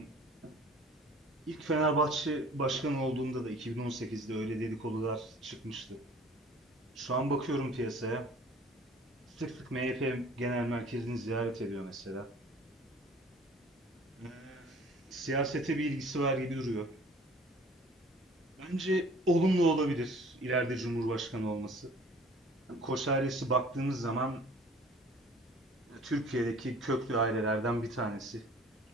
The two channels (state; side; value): normal; both; correlation 0.50